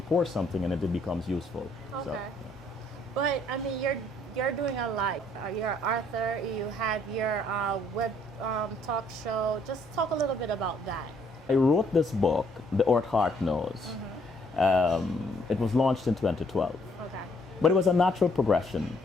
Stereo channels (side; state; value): both; normal; correlation 0.66